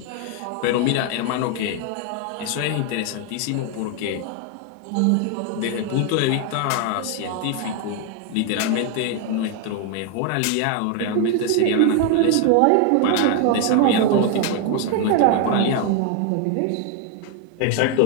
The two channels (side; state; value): both; different; correlation 0.01